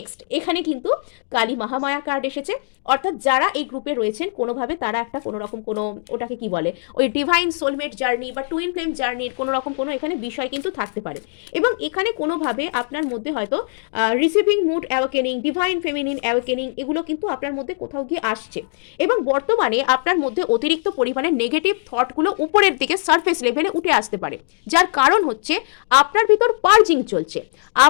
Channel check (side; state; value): right; silent; digital silence